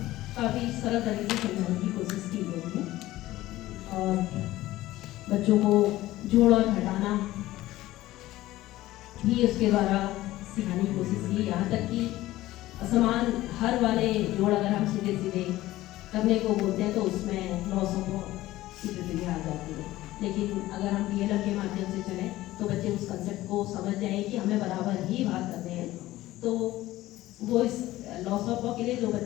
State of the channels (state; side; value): quieter; right; 16.4 dB